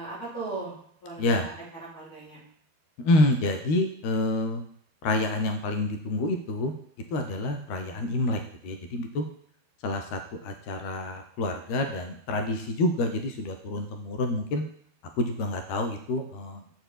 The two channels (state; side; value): late; right; 13 ms